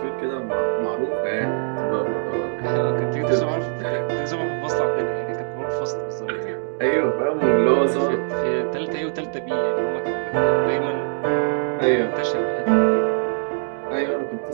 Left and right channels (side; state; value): left; silent; digital silence